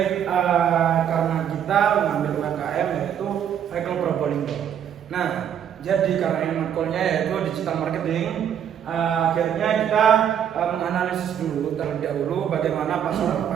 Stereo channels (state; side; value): quieter; left; 9.2 dB